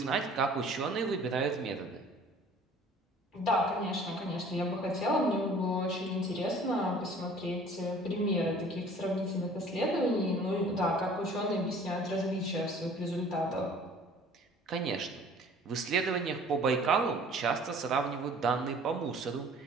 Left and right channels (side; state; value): both; normal; correlation 0.50